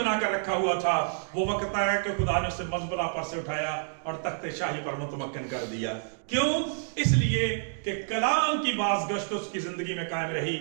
کر رکھا ہوا تھا. وہ وقت آیا کہ خدا نے اسے مزبلہ پر سے اٹھایا اور تخت شاہی پر متمکن کر دیا. کیوں؟ اس لیے کہ کلام کی بازگشت اس کی زندگی میں قائم رہی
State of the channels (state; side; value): silent; left; digital silence